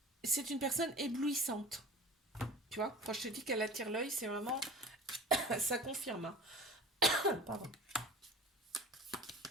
c'est une personne éblouissante. Tu vois, quand je te dis qu'elle attire l'œil, c'est vraiment, ça confirme, hein. Pardon.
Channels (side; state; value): both; normal; correlation 0.39